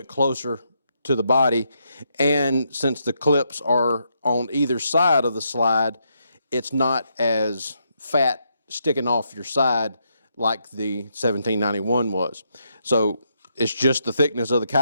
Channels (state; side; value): inverted; both; correlation -0.79